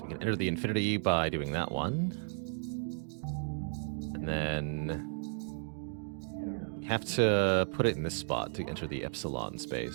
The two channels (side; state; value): left; silent; digital silence